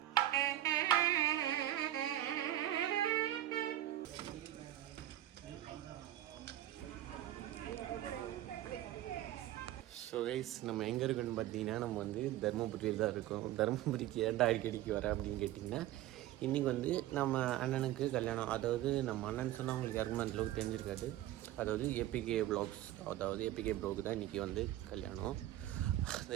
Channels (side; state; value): left; quieter; 13.7 dB